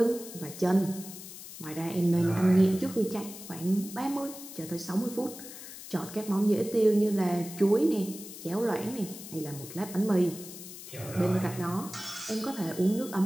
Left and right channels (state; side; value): noise; left; hiss, 13 dB below the sound